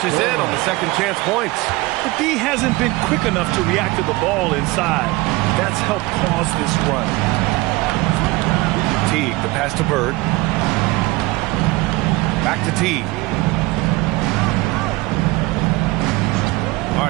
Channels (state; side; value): quieter; left; 21.5 dB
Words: in on the second chance points. The D hasn't been quick enough to react to the ball inside. That's helped cause this run. Teague, the pass to Bird. Back to Teague. All